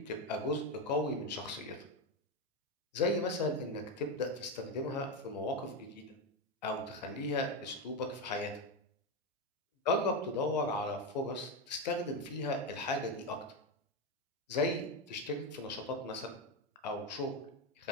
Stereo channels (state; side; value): normal; both; correlation 0.11